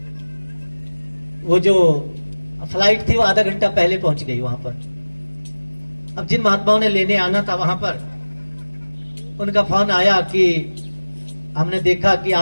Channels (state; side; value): inverted; both; correlation -1.00